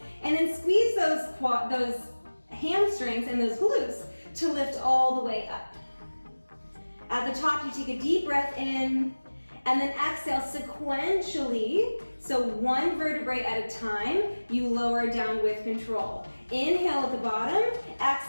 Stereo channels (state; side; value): inverted; both; correlation -1.00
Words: and then squeeze those hamstrings and those glutes to lift all the way up. At the top, you take a deep breath in, and then exhale sequentially, so one vertebrae at a time, you lower down with control. Inhale at the bottom,